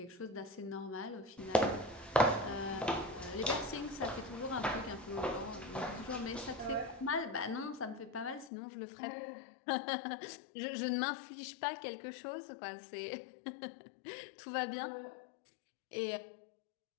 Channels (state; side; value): drops out; right; at 8.5 s